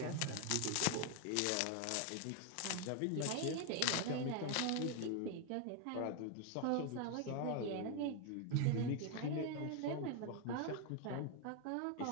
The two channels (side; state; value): both; different; correlation 0.01